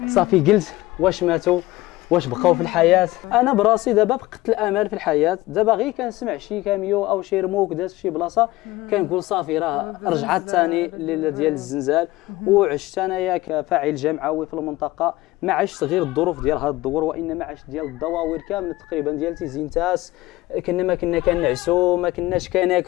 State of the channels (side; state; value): right; quieter; 18.3 dB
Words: صافي قلت واش ماتوا واش بقاو في الحياه. انا براسي دابا فقدت الامل في الحياه دابا غير كنسمع شي كاميو او شي رموك داز في شي بلاصه كنقول صافي راه رجعت ثاني الليله ديال الزلزال وعشت انايا كفاعل جمعوي في المنطقه ما عشت غير الظروف ديال هذا الدور وانما عشت ديال الدواوير كامله تقريبا ديال تيزينتاس ما كنا كنعسوا ما كناش